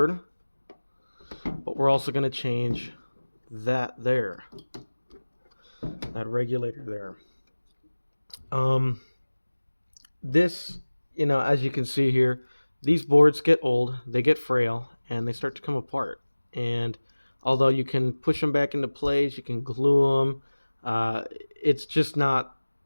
but we're also going to change that regulator there. This, as you can see here, these boards get old, they get frail, and they start to come apart. And although you can push them back into place, you can glue them, it's just not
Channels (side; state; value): both; inverted; correlation -1.00